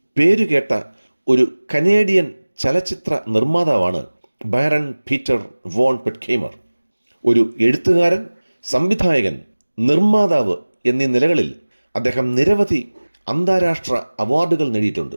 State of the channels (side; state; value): both; inverted; correlation -1.00